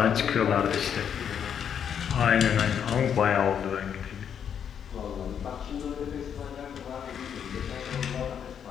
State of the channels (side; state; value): right; quieter; 8.2 dB